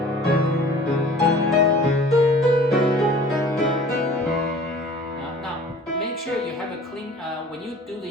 Make sure you have a clean, when you do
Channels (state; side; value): normal; both; correlation 0.47